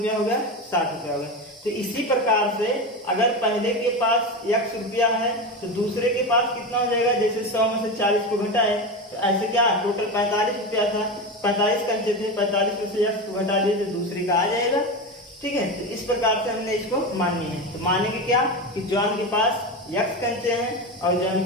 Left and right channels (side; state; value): both; normal; correlation 0.20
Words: हो गया, 60 रुपया हो गया। तो इसी प्रकार से अगर पहले के पास x रुपया है, तो दूसरे के पास कितना हो जाएगा, जैसे 100 में से 40 को घटाए तो ऐसे क्या टोटल 45 रुपया था, 45 कंचे थे, 45 में से x को घटा दिए तो दूसरे का आ जाएगा। ठीक है, तो इस प्रकार से हमने इसको माननी है। तो मानेंगे क्या कि जॉन के पास x कंचे हैं और